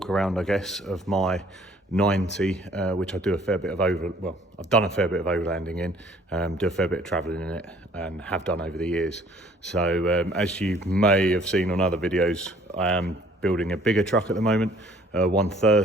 around, I guess, of my 90, which I do a fair bit of I've done a fair bit of overlanding in, do a fair bit of travelling in it, and have done over the years. So as you may have seen on other videos, I am building a bigger truck at the moment,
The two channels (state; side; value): normal; both; correlation 0.57